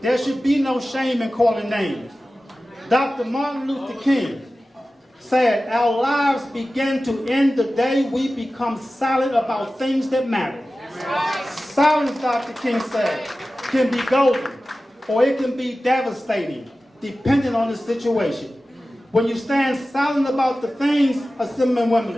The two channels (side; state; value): both; normal; correlation 0.95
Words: There should be no shame in calling names. Dr. Martin Luther King said, "Our lives begin to end the day we become silent about things that matter." Silence, Dr. King said, can be golden, or it can be devastating, depending on the situation. When you stand silent about the things, assembling